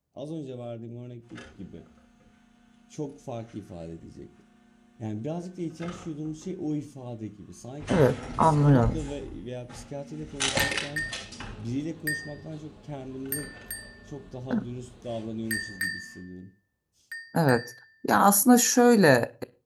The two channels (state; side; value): identical; both; correlation 1.00